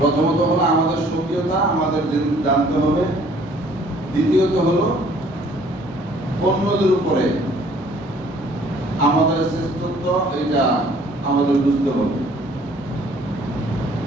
হলো আমাদের সক্রিয়তা আমাদের জানতে হবে, দ্বিতীয়ত হলো অন্যদের উপরে আমাদের শ্রেষ্ঠত্ব এটা আমাদের বুঝতে হবে।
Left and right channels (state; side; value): normal; both; correlation 0.57